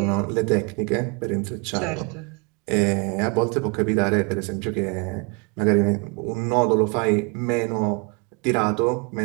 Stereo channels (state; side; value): quieter; left; 31.6 dB